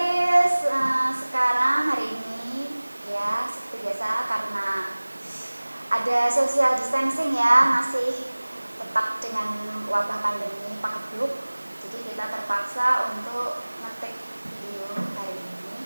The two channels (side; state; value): both; inverted; correlation -1.00